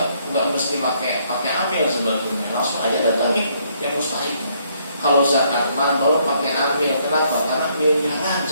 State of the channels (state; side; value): inverted; both; correlation -0.69